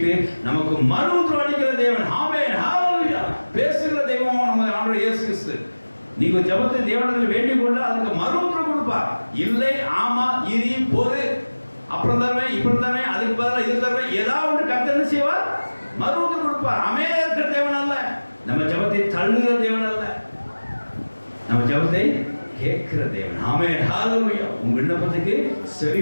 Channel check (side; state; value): both; inverted; correlation -1.00